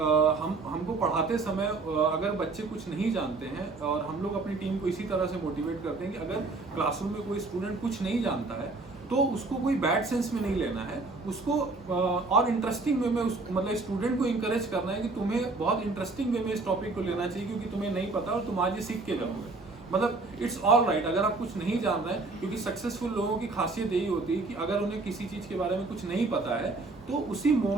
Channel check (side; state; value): left; quieter; 3.6 dB